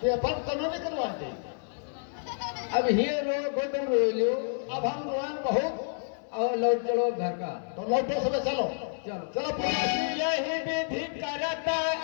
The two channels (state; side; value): silent; right; 58 dB below the other